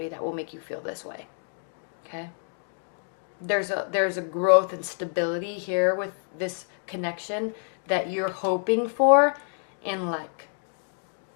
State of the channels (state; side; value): silent; right; digital silence